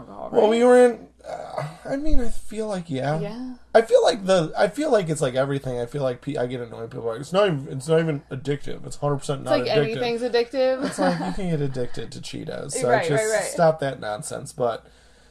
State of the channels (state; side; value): identical; both; correlation 1.00